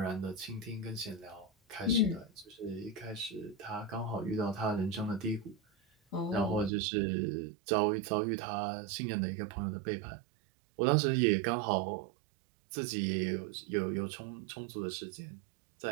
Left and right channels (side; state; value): left; drops out; at 6.7 s